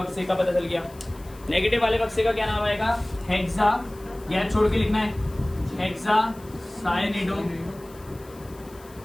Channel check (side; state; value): left; noise; hiss, 24 dB below the sound